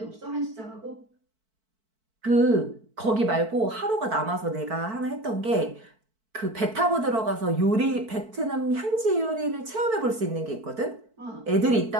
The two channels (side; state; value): left; late; 4.5 ms